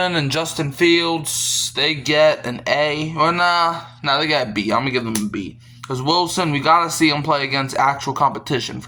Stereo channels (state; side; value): identical; both; correlation 1.00